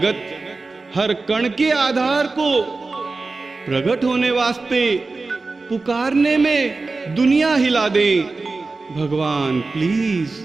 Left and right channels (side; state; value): left; quieter; 3.7 dB